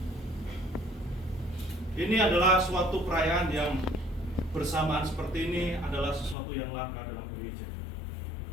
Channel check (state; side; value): drops out; right; at 6.4 s